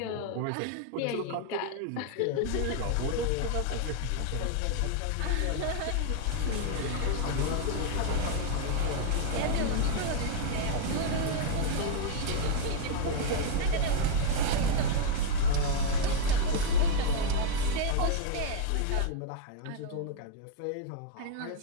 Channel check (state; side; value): different; both; correlation 0.00